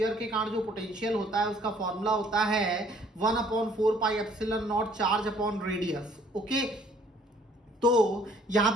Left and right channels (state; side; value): normal; both; correlation 0.60